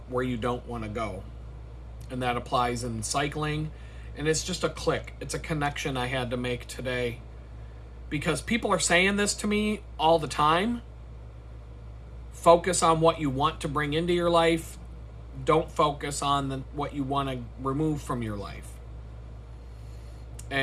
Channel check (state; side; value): identical; both; correlation 1.00